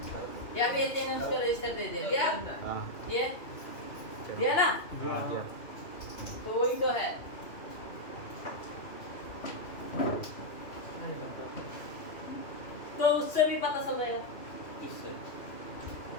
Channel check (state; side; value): late; right; 2.5 ms